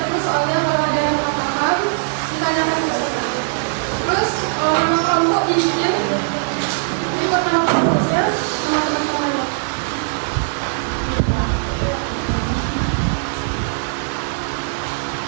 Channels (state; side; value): silent; left; digital silence